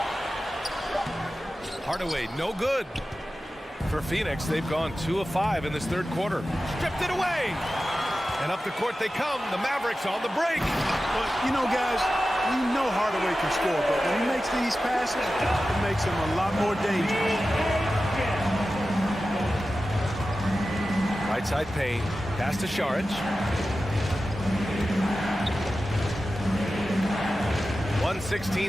Hardaway, no good. For Phoenix, they've gone 2 of 5 in this third quarter. Stripped it away. And up the court they come. The Mavericks on the break. But, you know, guys, we know Hardaway can score, but when he makes these passes, it makes him a lot more dangerous. Right side Payne. Pass to Šarić.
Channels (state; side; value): normal; both; correlation 0.94